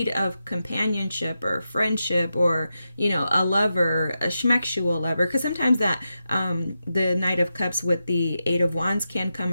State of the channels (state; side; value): inverted; both; correlation -0.88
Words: of companionship or friendship, or a lover, a schmexual lover. Because sometimes that the Knight of Cups with the Eight of Wands can come